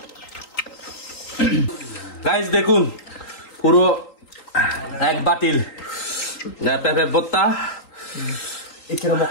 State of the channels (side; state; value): right; late; 3.8 ms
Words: গাইস দেখুন পুরো এক বাতিল পেঁপে ভর্তা 이처럼